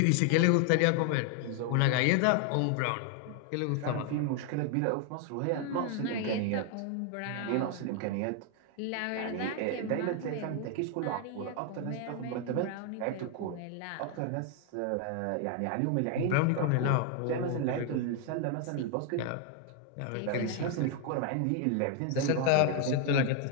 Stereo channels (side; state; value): both; different; correlation 0.00